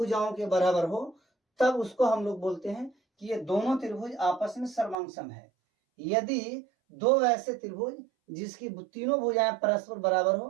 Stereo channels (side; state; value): left; drops out; at 5.0 s